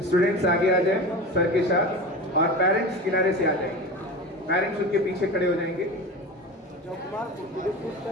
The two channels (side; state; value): both; normal; correlation 0.30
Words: स्टूडेंट्स आगे आ जाएं सर के साथ। और पेरेंट्स किनारे से आ जाएंगे। पेरेंट्स उनके पीछे खड़े हो जाएंगे।